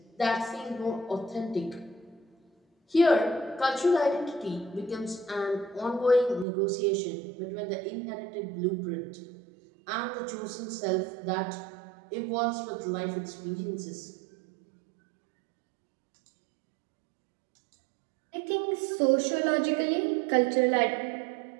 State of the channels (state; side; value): drops out; left; at 6.5 s